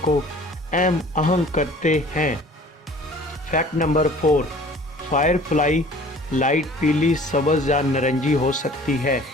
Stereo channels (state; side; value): normal; both; correlation 0.49